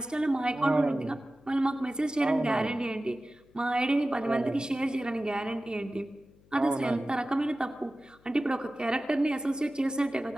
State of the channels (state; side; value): noise; left; hum, 29 dB below the sound